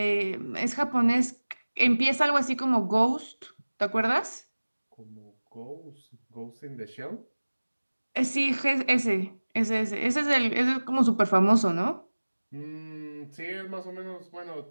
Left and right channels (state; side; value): inverted; both; correlation -1.00